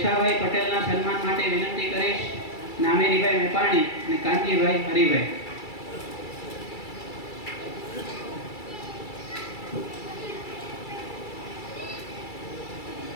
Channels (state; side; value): late; right; 2.3 ms